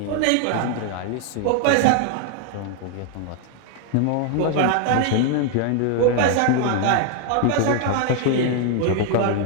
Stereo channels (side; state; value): both; different; correlation 0.00